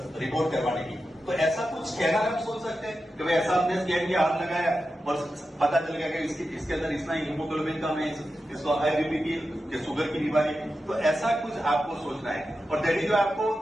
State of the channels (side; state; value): both; normal; correlation 0.91